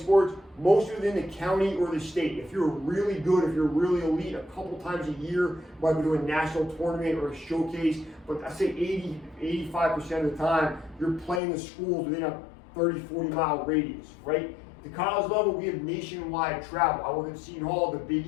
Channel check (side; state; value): right; drops out; at 11.4 s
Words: mostly within the county or the state. If you're really good, if you're really elite, a couple times a year, might be doing a national tournament or a showcase, but I say 85% of the time, you're playing the schools within a 30, 40 mile radius, right? At the college level, we have nationwide travel. I work at Seton Hall. The Big